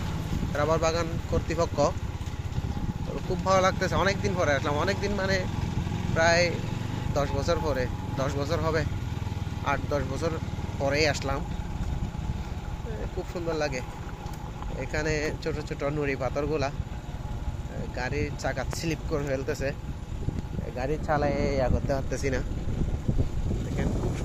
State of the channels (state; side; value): identical; both; correlation 1.00